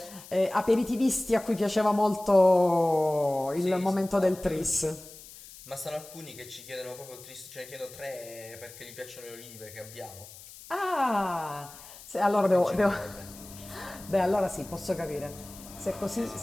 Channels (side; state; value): left; noise; hiss, 17 dB below the sound